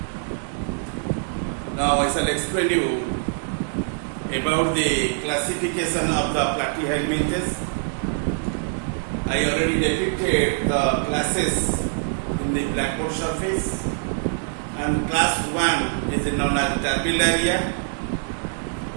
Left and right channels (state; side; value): silent; left; 58 dB below the other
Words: Now I shall explain you about the classification of the platyhelminthes. I already depicted the classes in the blackboard surface, and class 1 is known as Turbellaria.